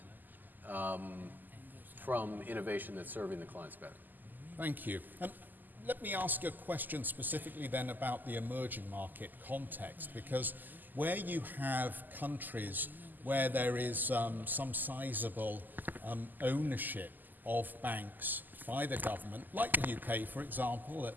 from innovation that's serving the clients better. Thank you. And let me ask a question specifically then about the emerging market context, because where you have countries where there is some sizable ownership of banks by the government, like the UK, for example,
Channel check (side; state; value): left; late; 0.086 ms